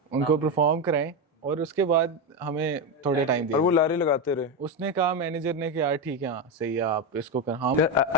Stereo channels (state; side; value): normal; both; correlation 0.12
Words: उनको परफॉर्म कराएं, और उसके बाद हमें थोड़े टाइम दिए। और वो लारे लगाते रहे। उसने कहा, मैनेजर ने कि यार ठीक है, हाँ सही है, आप इसको कर। हाँ